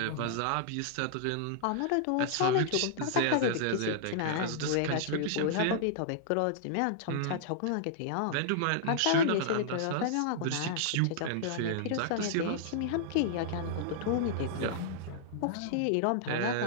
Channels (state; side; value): different; both; correlation -0.01